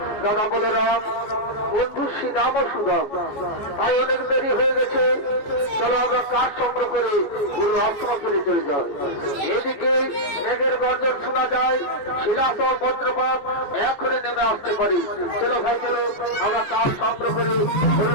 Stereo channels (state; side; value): late; right; 14 ms